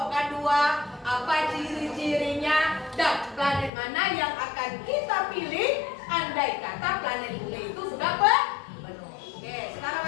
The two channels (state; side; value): drops out; right; at 3.7 s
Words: dua, apa ciri-cirinya, dan planet mana yang akan kita pilih andai kata planet bumi itu sudah penuh. Oke,